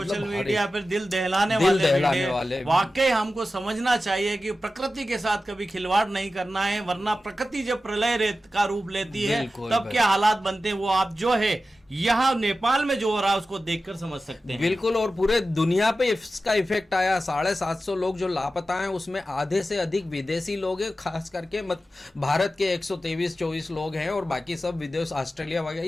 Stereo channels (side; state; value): both; normal; correlation 0.93